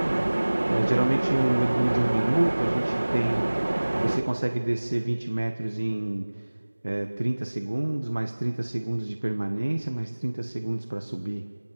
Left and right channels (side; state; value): both; inverted; correlation -1.00